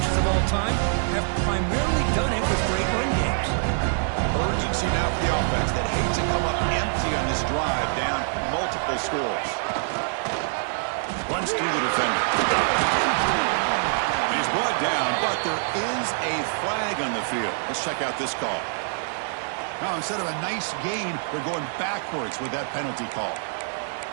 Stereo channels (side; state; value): left; silent; digital silence